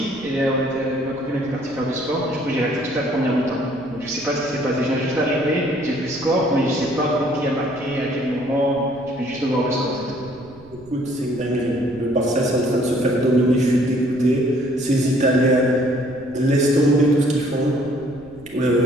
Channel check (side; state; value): right; noise; rumble, 22 dB below the sound